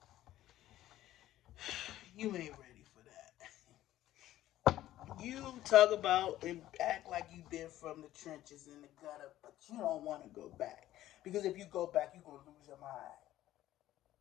You ain't ready for that. You talk about and act like you've been from the trenches in the gutter, but you don't want to go back. Because if you go back, you're going to lose your mind.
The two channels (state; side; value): quieter; right; 14.0 dB